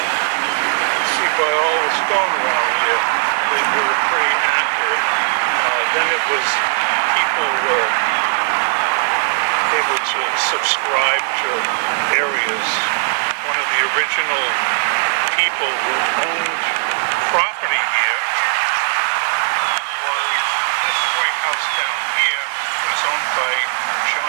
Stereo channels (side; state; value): left; silent; digital silence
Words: see by all the stone around here, they were pretty accurate. Then it was, people were able to subscribe to areas. One of the original people who owned property here was this White House down here was owned by